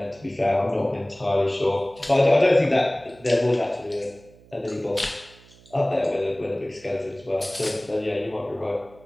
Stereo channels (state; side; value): noise; right; hum, 25 dB below the sound